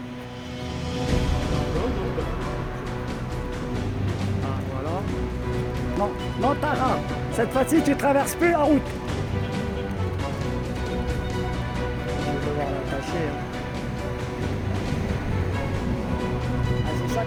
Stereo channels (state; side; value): identical; both; correlation 1.00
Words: Ah voilà. Non, non Tara, cette fois-ci tu traverses plus la route. Ah, c'est ça